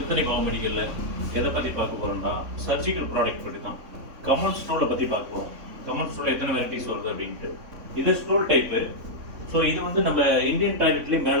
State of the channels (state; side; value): late; left; 3.6 ms